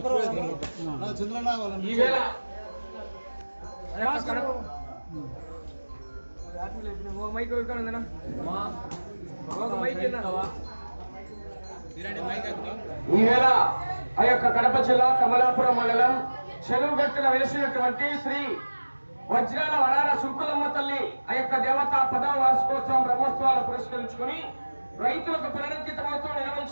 ఈవేళ ఆ యొక్క కడప జిల్లా కమలాపురం మండలం చెరువుగట్టున వెలిసినటువంటి శ్రీ వజ్రాల వరాల సుంకులమ్మ తల్లి ఆ యొక్క దేవత 10వ వార్షికోత్సవం బ్రహ్మోత్సవాలు పురస్కరించుకుని రైతులకు పునరుద్ధృతమవుతూ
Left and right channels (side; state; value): both; inverted; correlation -1.00